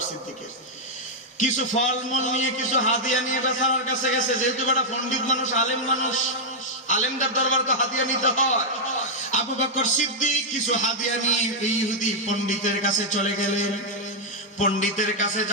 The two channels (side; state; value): both; normal; correlation -0.03